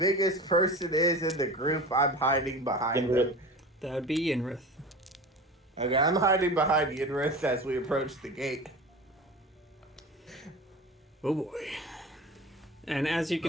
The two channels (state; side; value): normal; both; correlation 0.33